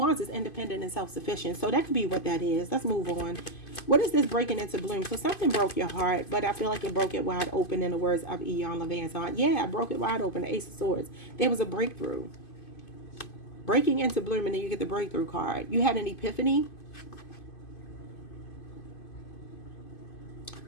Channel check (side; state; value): right; late; 2.5 ms